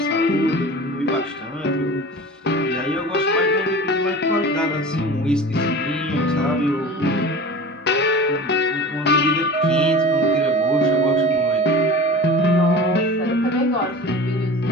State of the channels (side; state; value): both; normal; correlation 0.36